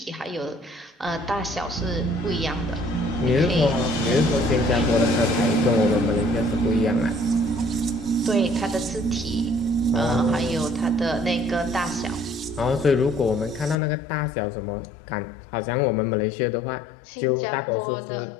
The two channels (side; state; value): right; drops out; at 13.8 s